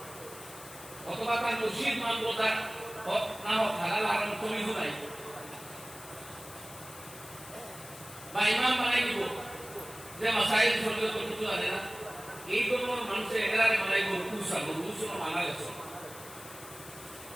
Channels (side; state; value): left; noise; hiss, 16 dB below the sound